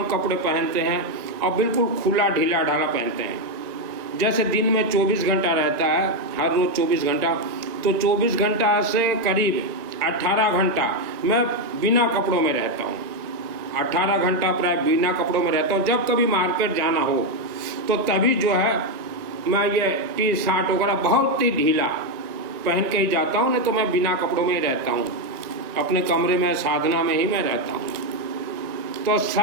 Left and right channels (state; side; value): late; left; 1.9 ms